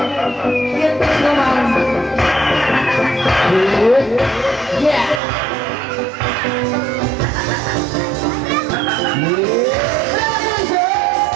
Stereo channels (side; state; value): left; drops out; at 5.2 s